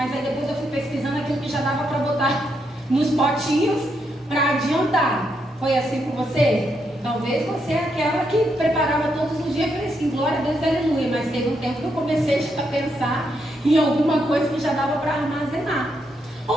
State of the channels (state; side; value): normal; both; correlation 0.79